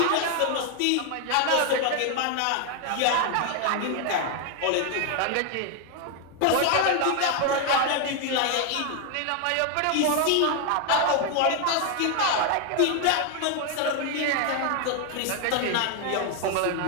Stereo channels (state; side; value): different; both; correlation 0.01